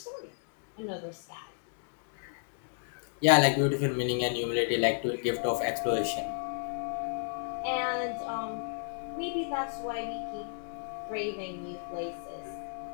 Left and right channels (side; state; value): right; silent; digital silence